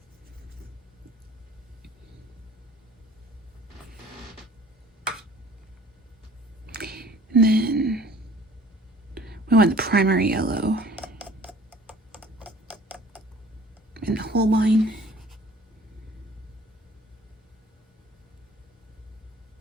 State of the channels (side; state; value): both; normal; correlation 0.51